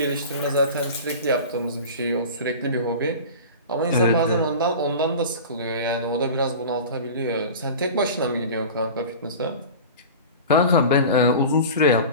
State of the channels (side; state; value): both; inverted; correlation -0.35